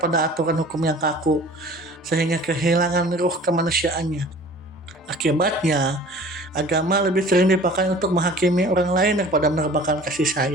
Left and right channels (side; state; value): both; normal; correlation 0.46